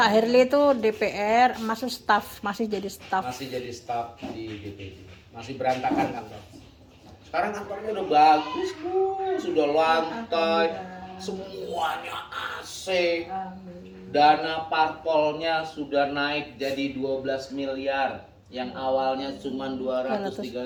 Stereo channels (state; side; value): identical; both; correlation 1.00